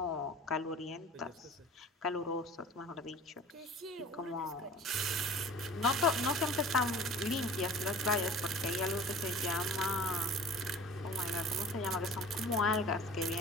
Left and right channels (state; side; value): normal; both; correlation 0.43